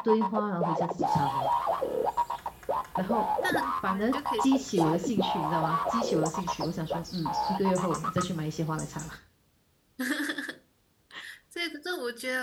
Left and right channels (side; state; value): both; identical; correlation 1.00